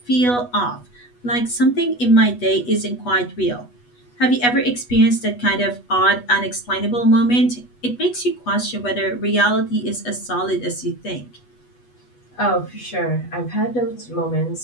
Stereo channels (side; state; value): right; late; 8.2 ms